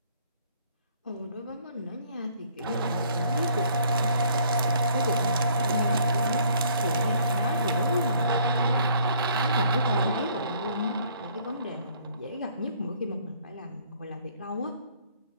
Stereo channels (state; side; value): inverted; both; correlation -0.60